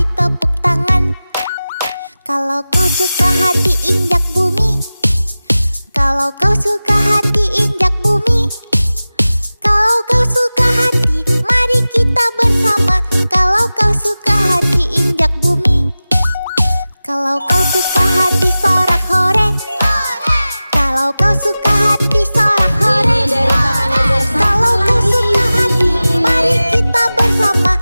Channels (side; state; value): both; inverted; correlation -0.96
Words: tepuk tangan. Kalau kau suka hati injak bumi. Kalau kau suka hati injak bumi. Kalau kau suka hati mari kita bersama. Kalau kau suka hati injak bumi. Kalau kau suka hati sorak hore. Kalau kau suka hati sorak hore. Kalau kau suka hati mari kita bersama.